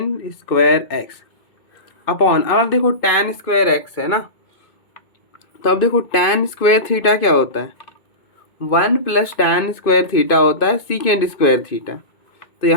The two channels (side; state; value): right; late; 2.5 ms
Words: square x upon. अब आप देखो tan स्क्वायर एक्स है ना, तो अब देखो tan स्क्वायर थीटा क्या होता है? 1 प्लस tan स्क्वायर थीटा होता है सीकेंड स्क्वायर थीटा. तो